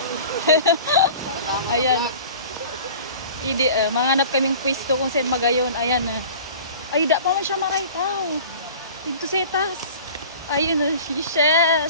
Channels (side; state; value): both; inverted; correlation -0.42